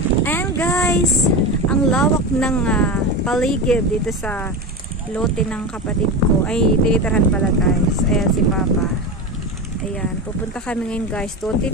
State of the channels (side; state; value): both; normal; correlation 0.22